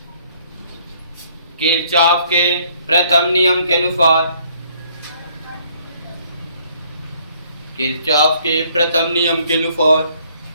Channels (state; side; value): inverted; both; correlation -0.63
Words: किरचॉफ के प्रथम नियम के अनुसार, किरचॉफ के प्रथम नियम के अनुसार